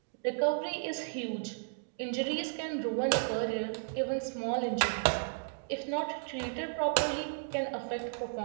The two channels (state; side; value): silent; left; digital silence